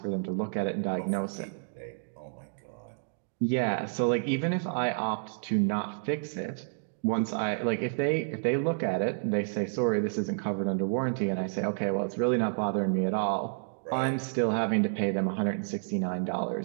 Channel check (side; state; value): left; silent; digital silence